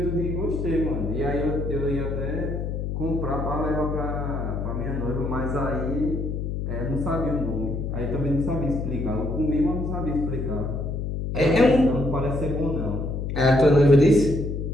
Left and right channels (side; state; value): left; noise; hum, 3 dB below the sound